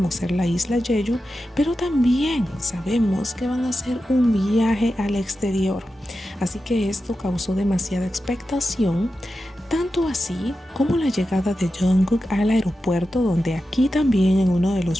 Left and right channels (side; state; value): both; normal; correlation 0.91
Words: ser la isla Jeju, pero también sabemos que van a hacer un viaje al exterior. Así que esto causó demasiada expectación, tanto así como la llegada de Jungkook al aeropuerto, donde aquí también en uno de